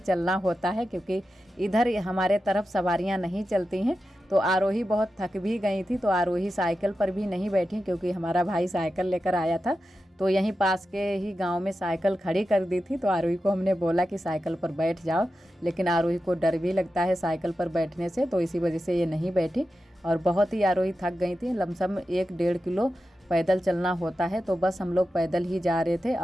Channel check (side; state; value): both; normal; correlation 0.91